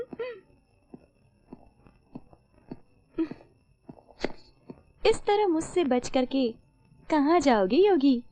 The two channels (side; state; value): both; identical; correlation 1.00